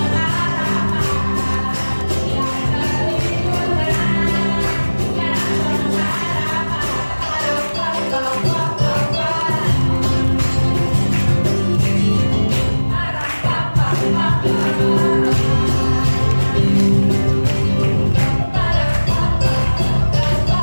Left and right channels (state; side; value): inverted; both; correlation -1.00